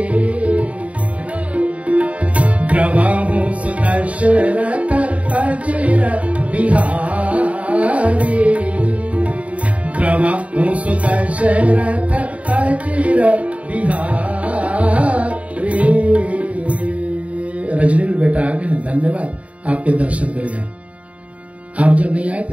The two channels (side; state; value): left; late; 0.066 ms